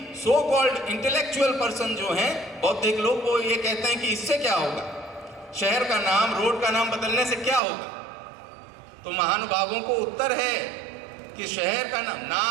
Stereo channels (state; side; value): drops out; left; at 7.6 s